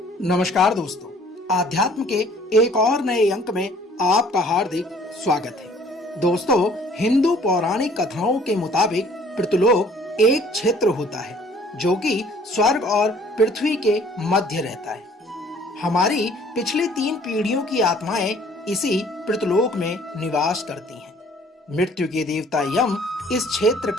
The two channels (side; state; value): both; normal; correlation 0.56